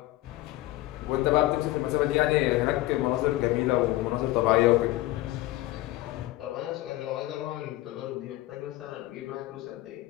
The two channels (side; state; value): right; quieter; 17.1 dB